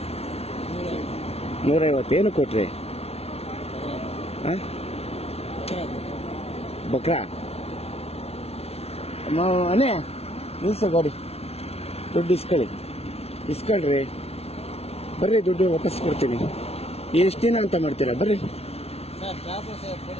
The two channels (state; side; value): late; right; 0.30 ms